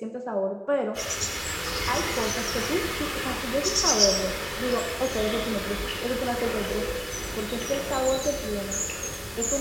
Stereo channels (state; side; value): identical; both; correlation 1.00